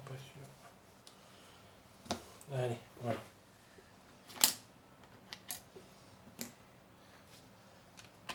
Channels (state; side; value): identical; both; correlation 1.00